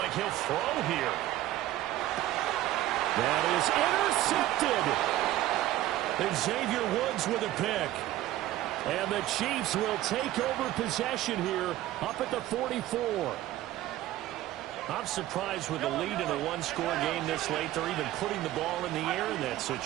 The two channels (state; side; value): quieter; left; 14.7 dB